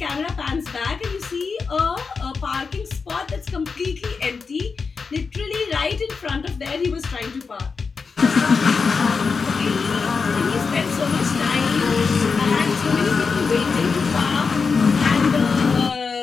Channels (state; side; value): quieter; right; 5.0 dB